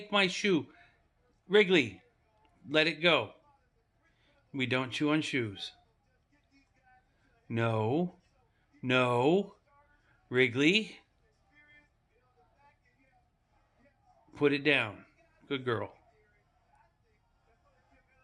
my shoe. Wrigley, let it go. We don't chew on shoes. No. Wrigley, put it down. Good girl.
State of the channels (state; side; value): identical; both; correlation 1.00